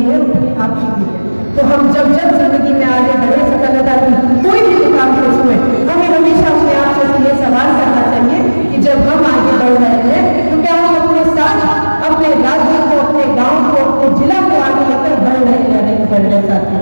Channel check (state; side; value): inverted; both; correlation -1.00